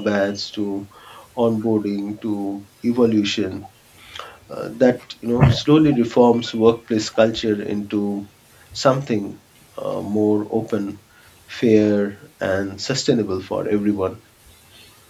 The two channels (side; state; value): both; identical; correlation 1.00